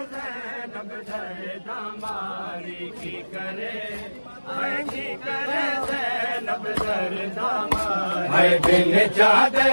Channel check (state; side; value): inverted; both; correlation -1.00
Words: ज़ैनब दर्दा मारी की करे हाय की करे ज़ैनब दर्दा मारी। हाय बिन चादे